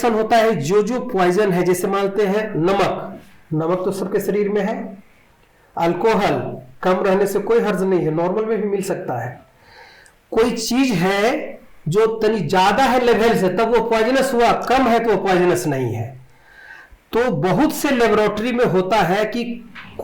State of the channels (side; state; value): both; identical; correlation 1.00